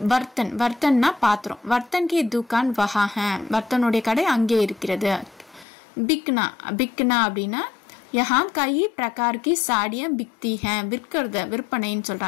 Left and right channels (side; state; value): right; drops out; at 5.7 s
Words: வர்த்தன்னா பாத்திரம். வர்த்தன் கி துக்கான் வஹா ஹே. வர்த்தனுடைய கடை அங்கே இருக்கிறது. பிக்னா அப்படின்னா यहाँ कई प्रकार की साड़ियां बिकती हैं. விற்பனைன்னு